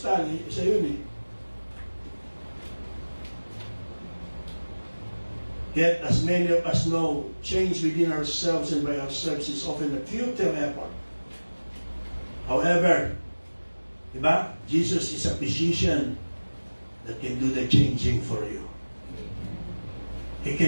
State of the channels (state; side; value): inverted; both; correlation -1.00